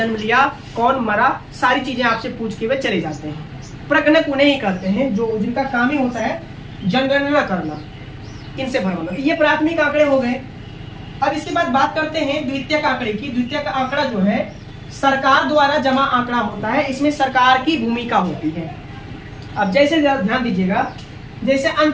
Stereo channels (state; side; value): identical; both; correlation 1.00